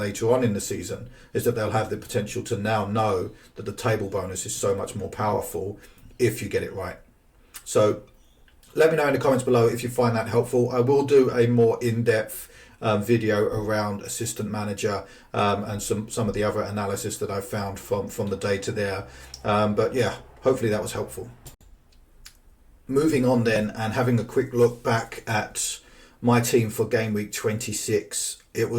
on in the season, is that they'll have the potential to now know that the table bonus is so much more powerful if you get it right. So let me know in the comments below if you find that helpful. I will do a more in-depth video around assistant manager and some of the other analysis that I found from the data there. But yeah, hopefully that was helpful. Moving on then, and having a quick look back at my team for game week 26, it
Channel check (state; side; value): identical; both; correlation 1.00